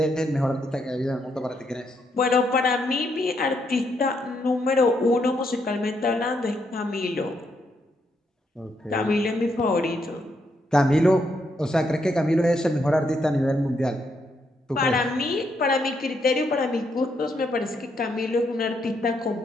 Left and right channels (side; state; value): both; normal; correlation 0.77